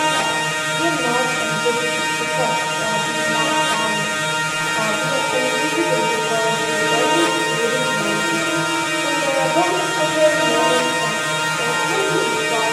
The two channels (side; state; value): both; identical; correlation 1.00